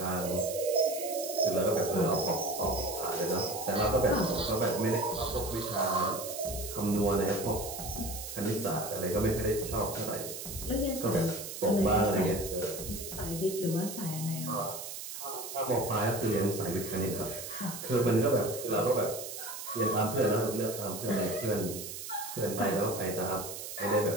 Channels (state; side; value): noise; right; hiss, 8 dB below the sound